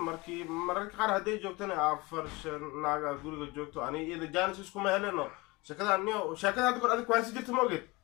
مركي قار هدي جوكتني عفرش ناقة قولي جوكتو أنا إذا جانس إسكو ما هلنا شكله أنيا شكله هذا كل هذا كويس جت موجود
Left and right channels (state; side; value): quieter; right; 23.3 dB